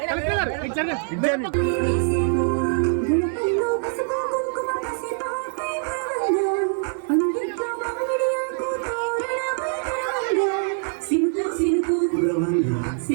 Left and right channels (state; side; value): silent; left; 63 dB below the other